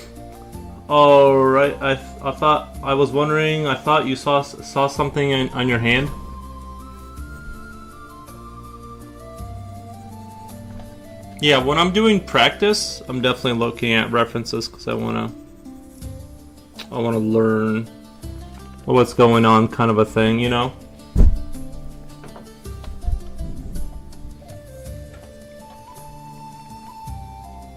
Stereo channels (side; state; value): both; identical; correlation 1.00